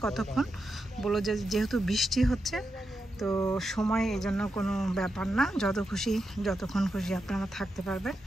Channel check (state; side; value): normal; both; correlation 0.87